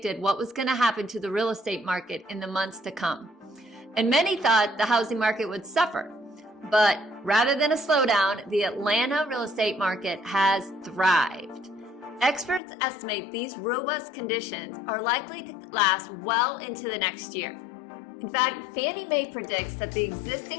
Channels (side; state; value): right; drops out; at 12.6 s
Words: what was going to happen to the real estate market in the months to come. And many thought the housing market would suffer. But rather than a slowdown, the Atlanta real estate market has thrived. Experts estimate these robust conditions are likely to last well into the next year. In fact, Fannie Mae predicts that the